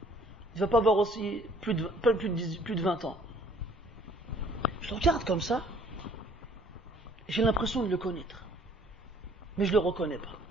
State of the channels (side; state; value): both; normal; correlation 0.58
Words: Il ne va pas avoir aussi plus de 20 ans. Je le regarde comme ça, et j'ai l'impression de le connaître. Mais je ne le reconnais